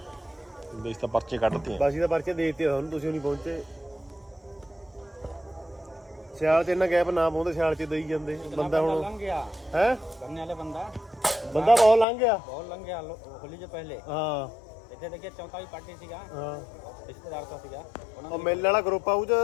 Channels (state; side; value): drops out; right; at 12.1 s